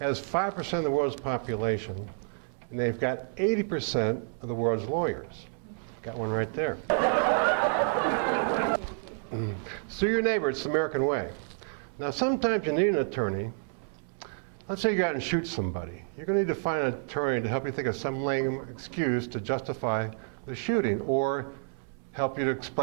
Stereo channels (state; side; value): silent; left; 58 dB below the other